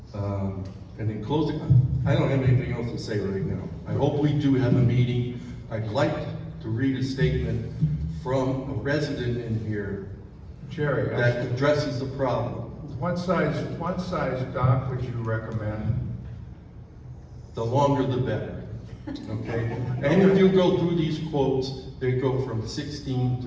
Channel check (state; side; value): identical; both; correlation 1.00